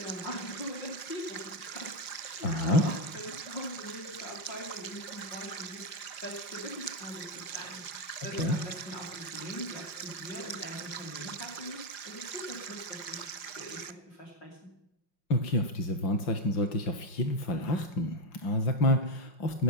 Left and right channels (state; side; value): late; right; 5.6 ms